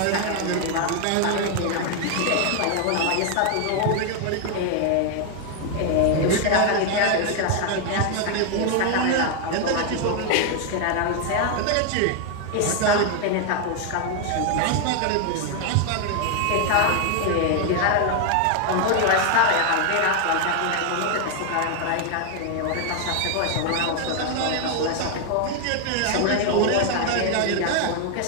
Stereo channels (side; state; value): both; different; correlation 0.00